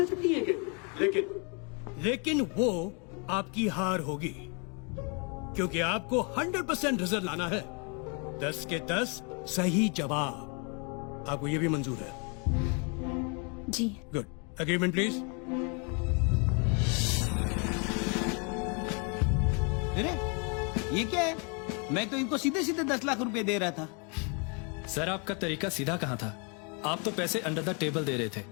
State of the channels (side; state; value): right; quieter; 35.2 dB